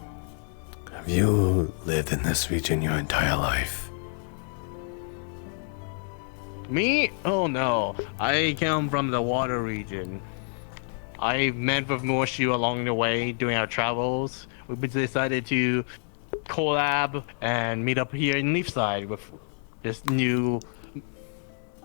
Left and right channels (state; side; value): silent; right; 55 dB below the other